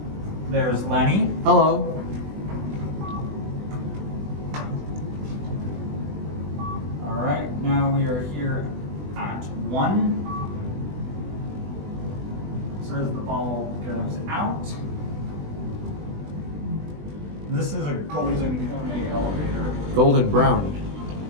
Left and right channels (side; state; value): left; late; 20 ms